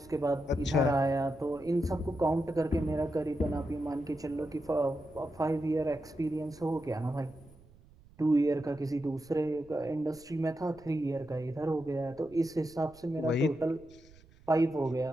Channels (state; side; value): noise; right; rumble, 25 dB below the sound